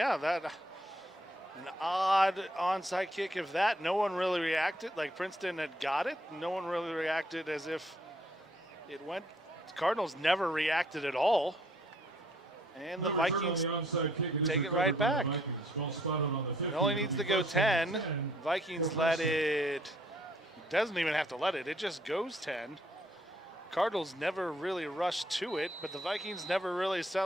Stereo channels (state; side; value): normal; both; correlation 0.66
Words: that an odd onside kick. If that, no one really reacted. Like Princeton had got it. No one really reacted as if it went. Cardinals never reacted at all. And the Vikings take it right back. It only needs to go 10. Vikings let it. Doesn't even have to let it. It just goes 10. Cardinals never really rushed to it, but the Vikings never really